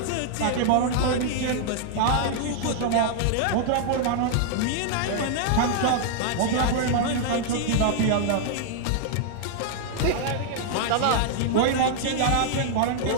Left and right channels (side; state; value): both; different; correlation 0.00